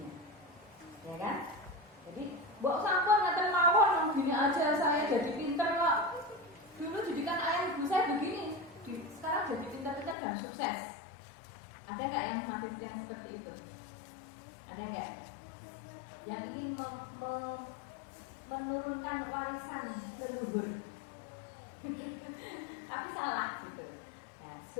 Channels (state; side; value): drops out; right; at 10.2 s